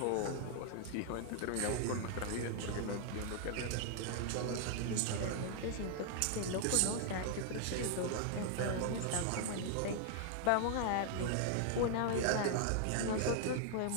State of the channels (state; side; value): different; both; correlation 0.00